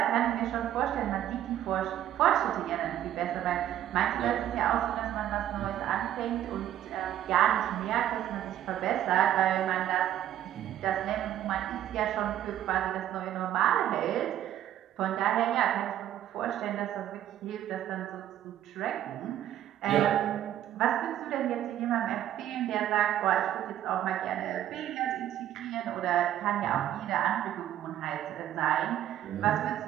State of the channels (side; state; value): left; quieter; 11.8 dB